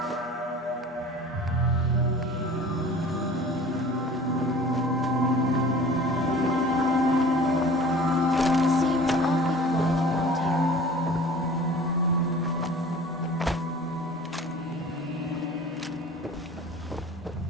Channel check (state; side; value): normal; both; correlation 0.44